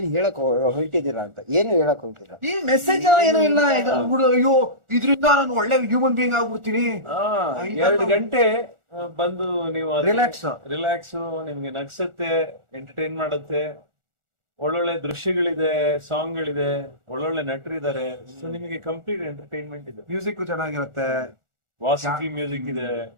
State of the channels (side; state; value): left; late; 1.4 ms